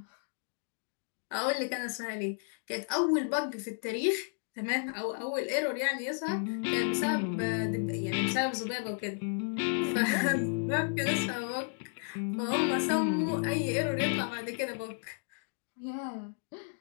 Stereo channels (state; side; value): silent; right; 56 dB below the other